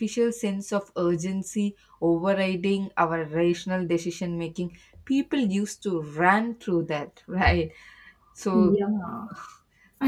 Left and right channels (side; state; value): both; identical; correlation 1.00